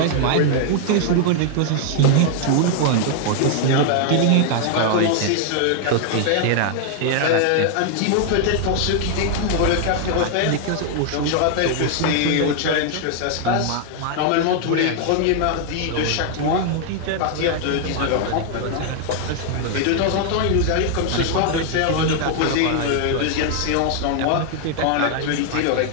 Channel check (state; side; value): different; both; correlation 0.00